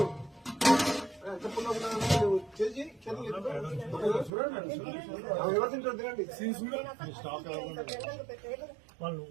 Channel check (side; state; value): left; drops out; at 4.3 s